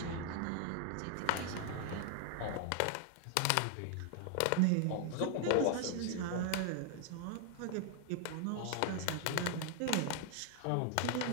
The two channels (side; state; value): both; different; correlation 0.00